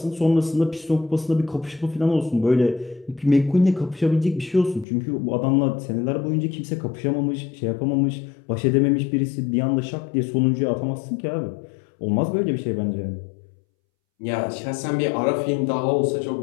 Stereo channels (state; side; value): drops out; right; at 4.9 s